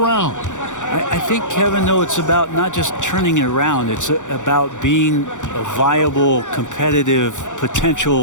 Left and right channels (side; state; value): right; late; 0.86 ms